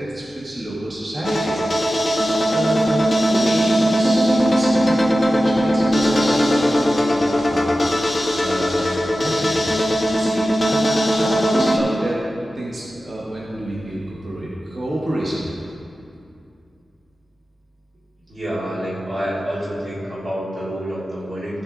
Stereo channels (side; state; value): both; normal; correlation 0.94